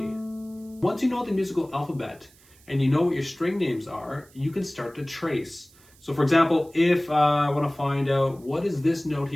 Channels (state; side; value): noise; right; hiss, 28 dB below the sound